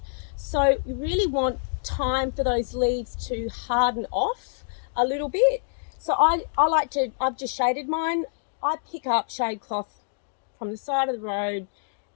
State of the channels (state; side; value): silent; right; digital silence